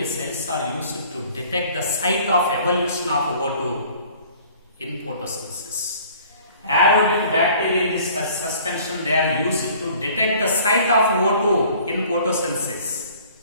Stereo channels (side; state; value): both; inverted; correlation -0.52